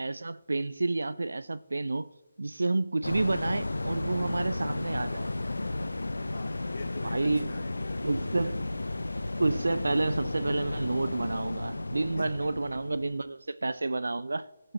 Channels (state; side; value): inverted; both; correlation -0.97